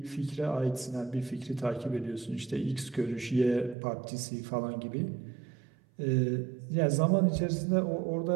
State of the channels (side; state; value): left; drops out; at 3.8 s